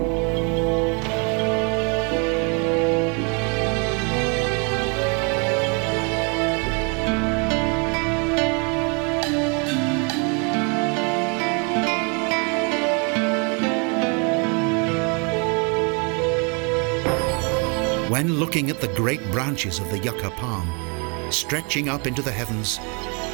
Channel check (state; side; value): quieter; left; 34.3 dB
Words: When looking at the great branches of the yucca palm, stretching up into the heavens,